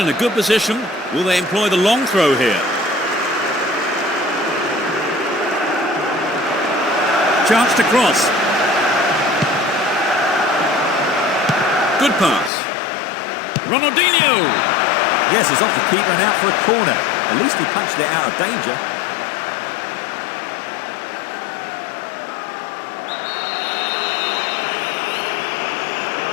good position. Will they employ the long throw here? Chance to cross. Good pass. Ronaldinho! Yes, it's off the keeper and out for a corner. At least he punched it out of danger.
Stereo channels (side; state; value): right; drops out; at 12.5 s